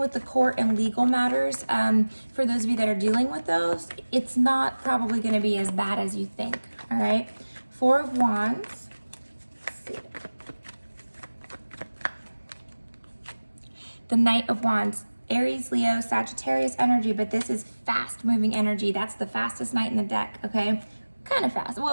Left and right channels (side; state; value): both; inverted; correlation -1.00